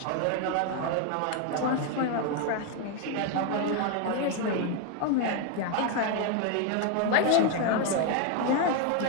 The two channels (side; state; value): both; different; correlation 0.01